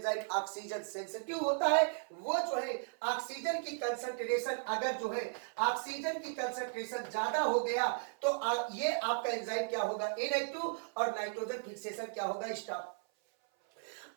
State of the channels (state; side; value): silent; left; 54 dB below the other